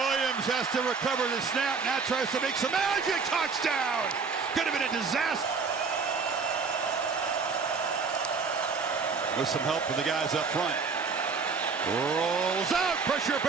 has to recover the snap. Now tries to make some magic. Touchdown! Could have been a disaster. With some help from the guys up front. Rolls out. Pressure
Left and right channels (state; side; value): quieter; left; 5.1 dB